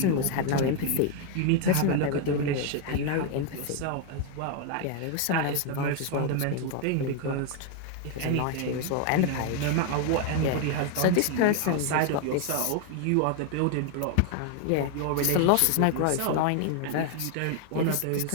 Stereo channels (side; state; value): both; different; correlation 0.01